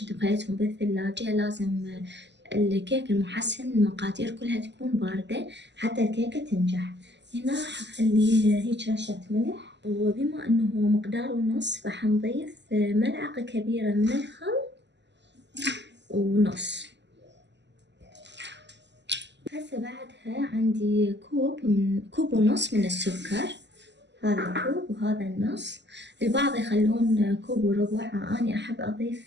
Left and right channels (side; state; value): left; late; 0.51 ms